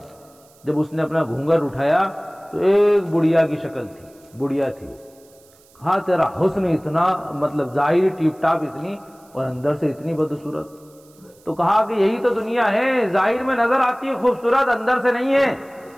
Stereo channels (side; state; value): right; noise; hiss, 29 dB below the sound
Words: جب اس نے اپنا گھونگھر اٹھایا تو ایک بڑھیا کی شکل تھی، بڑھیا تھی۔ کہا تیرا حسن اتنا، مطلب ظاہر ٹیپ ٹاپ اتنی اور اندر سے اتنی بدصورت۔ تو کہا کہ یہی تو دنیا ہے، ظاہر میں نظر آتی ہے خوبصورت، اندر سے نہیں ہے،